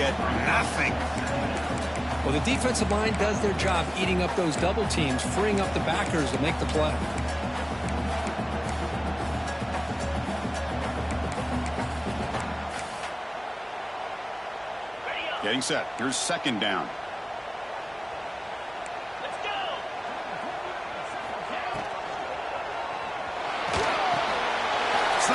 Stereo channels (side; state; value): both; identical; correlation 1.00